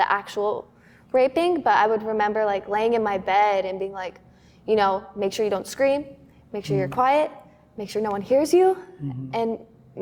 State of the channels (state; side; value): identical; both; correlation 1.00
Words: actual raping, but I would remember like laying in my bed and being like, make sure you don't scream, make sure you're quiet, make sure no one hears you, and